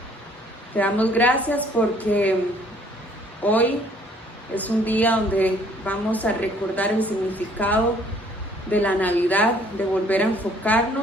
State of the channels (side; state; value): both; normal; correlation 0.60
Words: Te damos gracias porque hoy es un día donde vamos a recordar el significado de la Navidad, de volver a